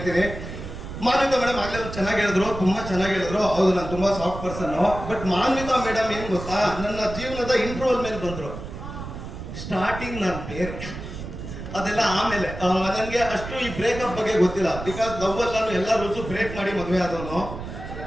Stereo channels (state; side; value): noise; right; rumble, 9 dB below the sound